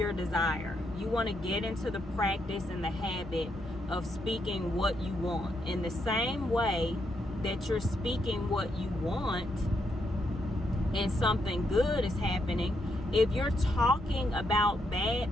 desire. You want to get into the practice and the habit of speaking what you want. In the same way that you're speaking what you want and something good is happening, if you're talking about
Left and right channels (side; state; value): both; normal; correlation 0.79